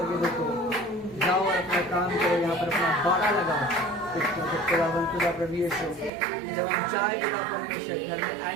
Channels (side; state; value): left; drops out; at 6.1 s